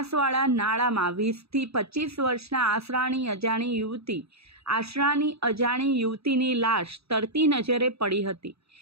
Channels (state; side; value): late; left; 0.78 ms